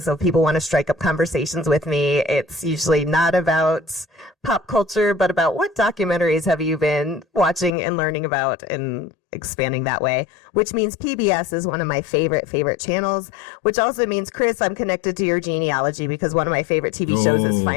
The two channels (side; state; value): right; drops out; at 7.7 s